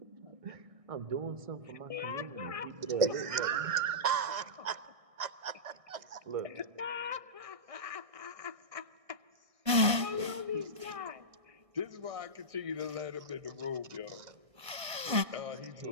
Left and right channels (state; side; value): late; left; 1.6 ms